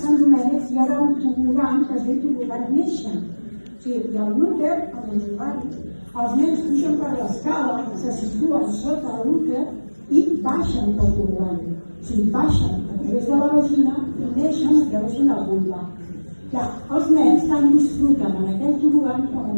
Sant Domènec hi haurà un tobogan que es diu tobogan Néixer. O sigui, hi ha un úter amb els usuaris, els nens pugen per l'escala, se situen sota l'úter i baixen pel tobogan. O sigui, baixen a través de la vagina i neixen a través d'una vulva. Clar, els nens tant disfruten en aquell tobogan com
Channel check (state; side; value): inverted; both; correlation -1.00